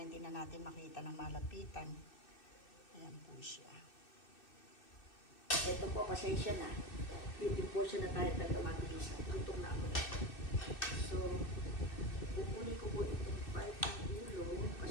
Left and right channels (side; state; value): right; late; 2.6 ms